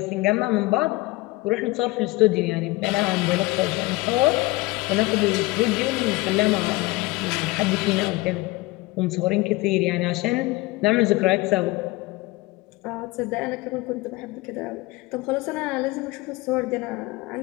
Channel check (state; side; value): quieter; right; 21.3 dB